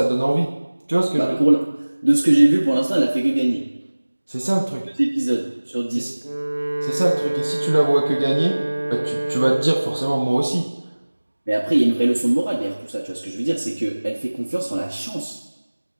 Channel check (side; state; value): both; inverted; correlation -1.00